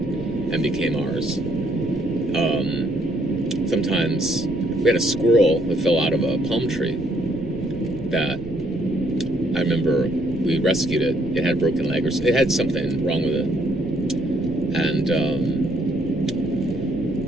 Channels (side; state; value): right; noise; rumble, 16 dB below the sound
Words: and became ours. Sometimes we had a squirrel that fell out of a palm tree that I remember we rescued it. It had a broken leg, or it had something wrong with it. And